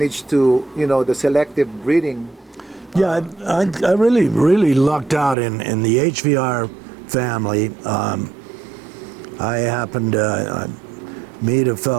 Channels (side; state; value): left; drops out; at 5.4 s